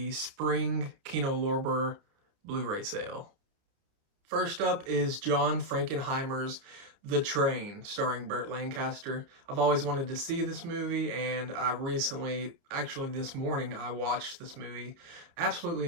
spring Kino Lorber Blu-ray sale. First up is John Frankenheimer's The Train, starring Burt Lancaster. I've always wanted to see this movie, and I recently, actually this morning, I watched this movie. Absolutely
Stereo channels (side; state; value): left; late; 30 ms